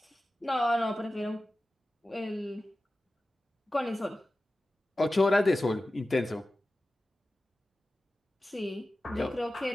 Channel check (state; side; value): normal; both; correlation 0.95